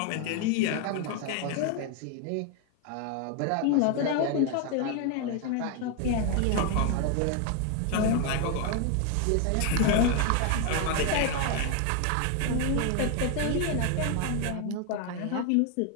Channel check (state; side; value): different; both; correlation 0.01